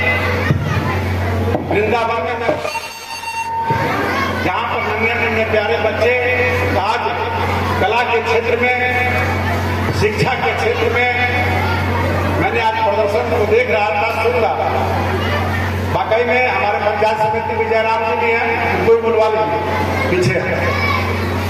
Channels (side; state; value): both; identical; correlation 1.00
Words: वृंदावन में जहां पर नन्हे नन्हे प्यारे बच्चे आज कला के क्षेत्र में, शिक्षा के क्षेत्र में, मैंने आज प्रदर्शन को देख रहा था, सुन रहा था। वाकई में हमारे पंचायत समिति विजयराम जी भी हैं, कोई बुलवा लीजिए पीछे।